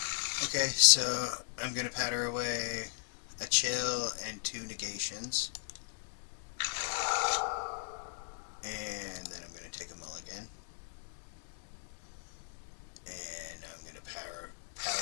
Okay, so I'm going to patter away a chill and 2 negations. And then I'm going to take a mulligan. And I'm going to powder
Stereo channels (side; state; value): right; silent; digital silence